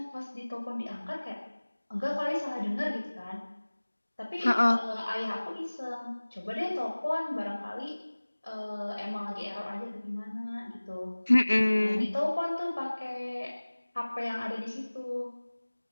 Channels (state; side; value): inverted; both; correlation -1.00